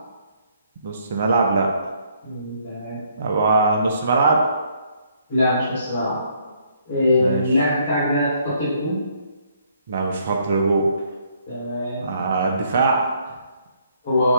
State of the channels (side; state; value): both; inverted; correlation -0.68